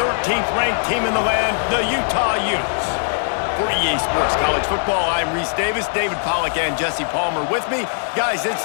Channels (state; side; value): silent; right; 66 dB below the other